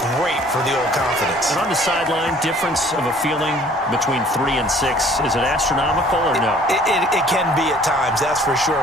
great for the old confidence. And on the sideline, difference of a feeling between 3 and 6, is it astronomical or no? It can be at times, that's for sure.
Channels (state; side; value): normal; both; correlation 0.54